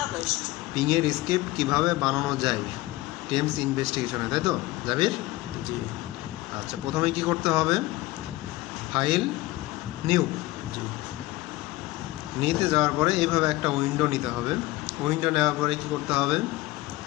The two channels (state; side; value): quieter; right; 18.9 dB